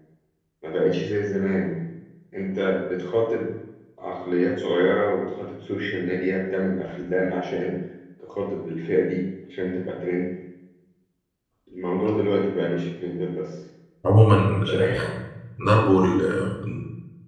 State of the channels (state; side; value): identical; both; correlation 1.00